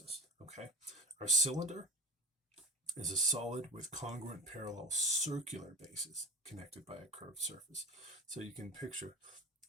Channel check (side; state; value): both; normal; correlation 0.31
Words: okay? Our cylinder is a solid with congruent parallel circular bases connected by a curved surface. So you can picture